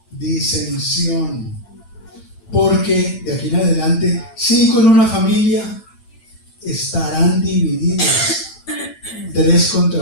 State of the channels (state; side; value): late; right; 8.9 ms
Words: disensión. Porque de aquí en adelante, 5 en una familia estarán divididos, 3